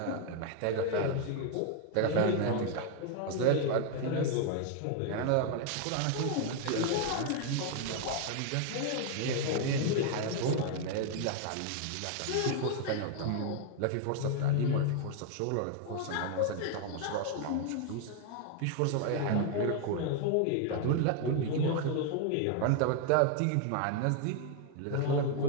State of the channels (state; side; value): different; both; correlation 0.00